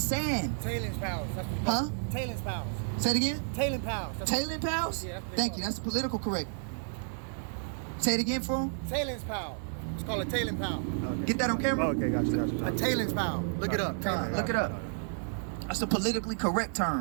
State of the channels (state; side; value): silent; left; digital silence